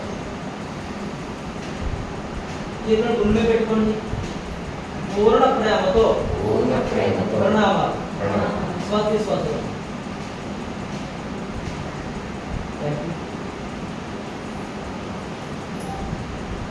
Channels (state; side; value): identical; both; correlation 1.00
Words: చేతులను గుండె పెట్టుకోండి. పూర్ణ ప్రేమతో ప్రణామాలు. శ్వాసలు